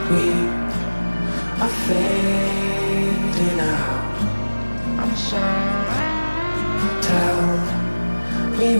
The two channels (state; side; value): inverted; both; correlation -1.00